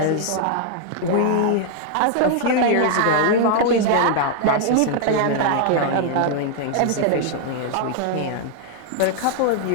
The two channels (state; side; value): different; both; correlation 0.00